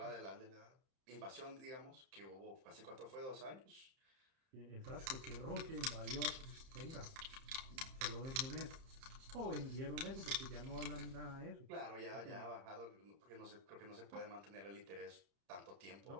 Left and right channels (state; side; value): late; left; 30 ms